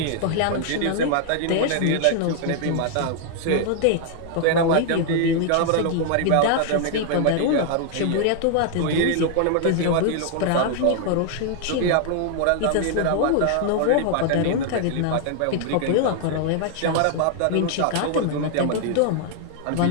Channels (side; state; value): both; different; correlation 0.00